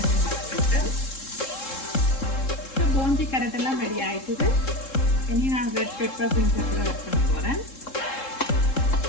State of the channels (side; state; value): right; late; 3.7 ms